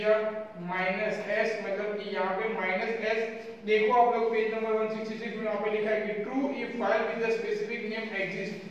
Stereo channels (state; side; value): identical; both; correlation 1.00